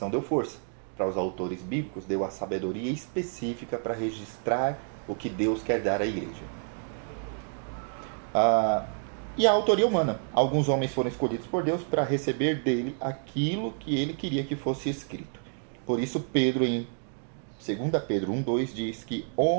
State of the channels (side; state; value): left; silent; 59 dB below the other